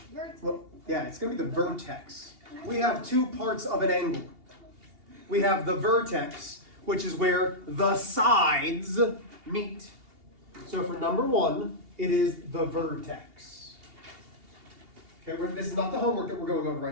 Vertex. Well, yeah, it's going to be the vertex. We have two parts of an angle. We have the vertex, which is where the sides meet. So for number 1, it is the vertex. Okay, this is not the homework that we're going over right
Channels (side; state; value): left; late; 2.8 ms